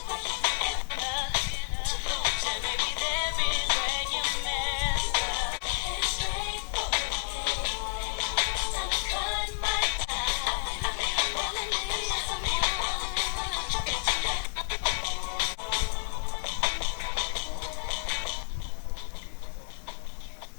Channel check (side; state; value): right; silent; digital silence